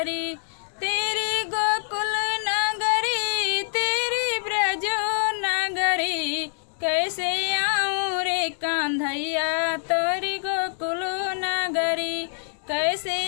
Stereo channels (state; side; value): silent; right; digital silence